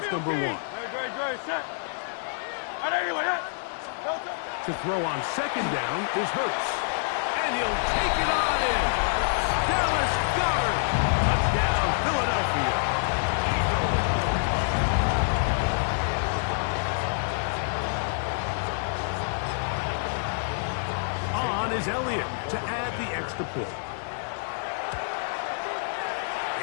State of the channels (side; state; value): right; silent; digital silence